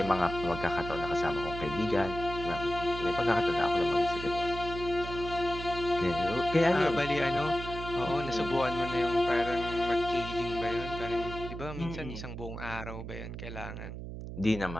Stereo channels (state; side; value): noise; right; hum, 9 dB below the sound